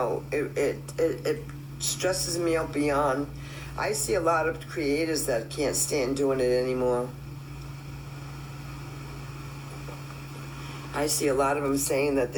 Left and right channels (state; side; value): identical; both; correlation 1.00